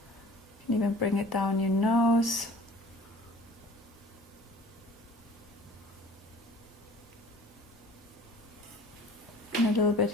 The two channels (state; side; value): normal; both; correlation 0.48